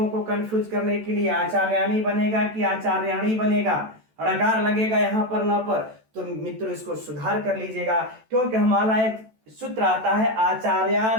को कंफ्यूज करने के लिए, आचार्याणी बनेगा कि आचार्याणी बनेगा, ड़कार लगेगा यहां पर न पर। तो मित्रों इसको सुधार कर लीजिएगा, क्योंकि हमारा एक सूत्र आता है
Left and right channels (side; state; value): left; late; 14 ms